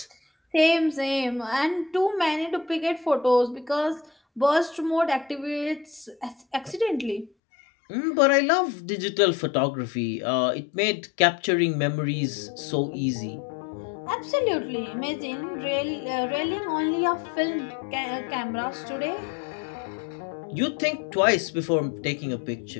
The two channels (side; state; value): right; drops out; at 7.3 s